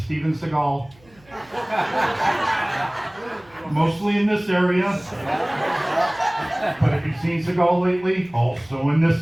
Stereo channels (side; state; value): right; noise; hum, 29 dB below the sound